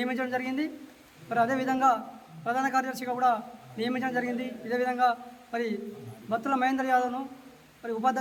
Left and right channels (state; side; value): identical; both; correlation 1.00